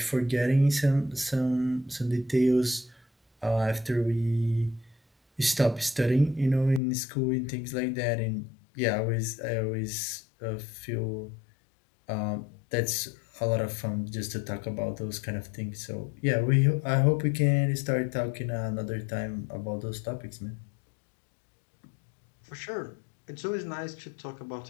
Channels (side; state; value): right; drops out; at 6.8 s